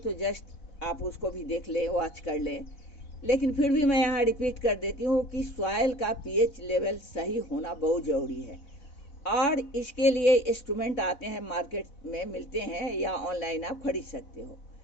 जस्ट आप उसको भी देख लें, वॉच कर लें। लेकिन फिर भी मैं यहाँ रिपीट कर देती हूँ कि सॉइल का पीएच लेवल सही होना बहुत ज़रूरी है और इसके लिए इंस्ट्रूमेंट आते हैं, मार्केट में मिलते हैं या ऑनलाइन आप खरीद सकते हो।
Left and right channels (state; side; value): late; right; 4.0 ms